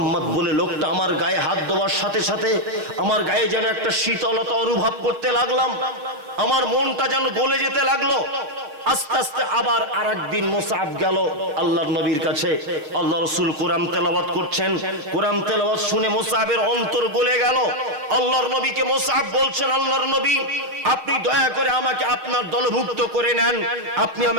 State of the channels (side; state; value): left; late; 6.7 ms